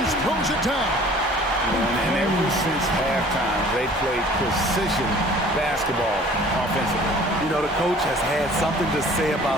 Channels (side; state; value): both; normal; correlation 0.50